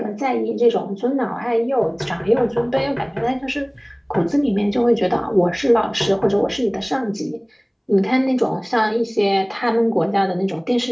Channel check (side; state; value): both; identical; correlation 1.00